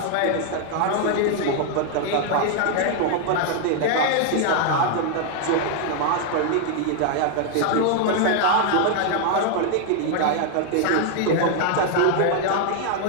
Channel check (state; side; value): different; both; correlation 0.00